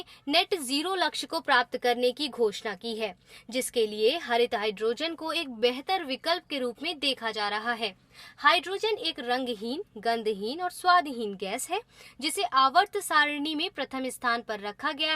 नेट जीरो लक्ष्य को प्राप्त करने की घोषणा की है, जिसके लिए हरित हाइड्रोजन को एक बेहतर विकल्प के रूप में देखा जा रहा है। हाइड्रोजन एक रंगहीन, गंधहीन और स्वादहीन गैस है, जिसे आवर्त सारणी में प्रथम स्थान पर रखा गया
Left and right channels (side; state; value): both; identical; correlation 1.00